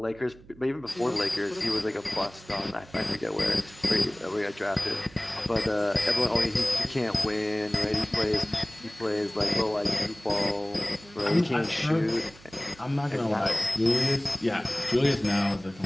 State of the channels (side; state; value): right; noise; hum, 22 dB below the sound